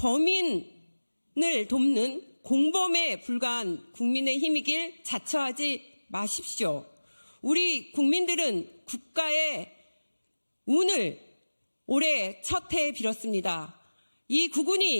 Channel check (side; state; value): both; inverted; correlation -1.00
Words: 돕는 공범에 불과한 국민의힘이길 자처하지 마십시오. 우리 국민들은 국가의 운을 올해 첫 해에 빌었습니다. 이